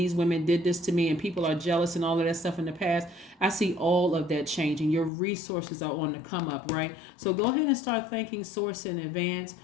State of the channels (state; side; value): drops out; right; at 5.1 s